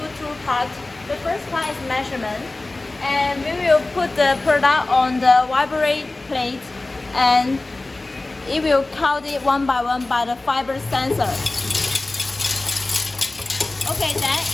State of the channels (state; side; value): quieter; right; 3.0 dB